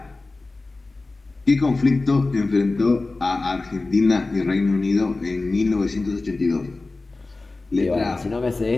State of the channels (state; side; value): quieter; right; 3.4 dB